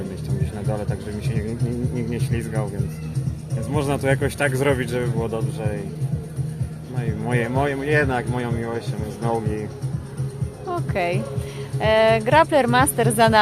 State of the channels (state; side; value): identical; both; correlation 1.00